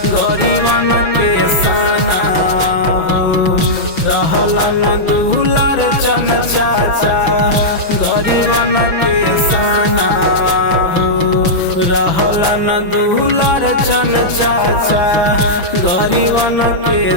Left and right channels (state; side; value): late; right; 6.0 ms